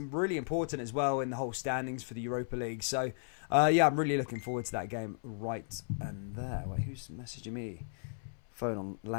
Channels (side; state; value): right; silent; 54 dB below the other